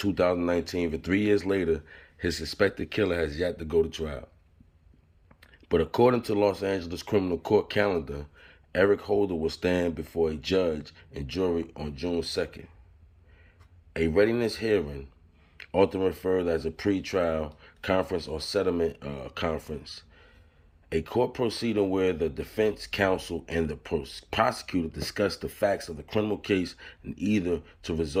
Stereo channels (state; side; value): identical; both; correlation 1.00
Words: but 3 years later, his suspected killer has yet to go to trial. But according to Los Angeles criminal court calendar, Eric Holder will stand before a judge and jury on June 2nd. A readiness hearing, often referred as a pre-trial conference or settlement conference, a court proceeding where the defense counsel and the prosecutor discuss the facts of the criminal case and either to